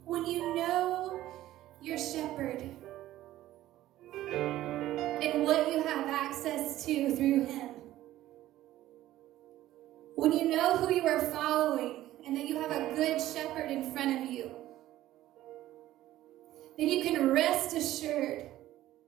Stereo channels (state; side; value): quieter; left; 14.5 dB